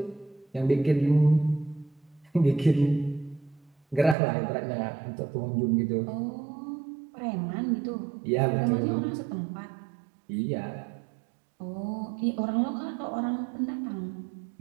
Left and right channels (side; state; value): left; drops out; at 4.2 s